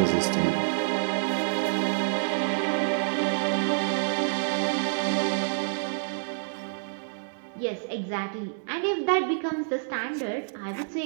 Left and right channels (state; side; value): silent; left; digital silence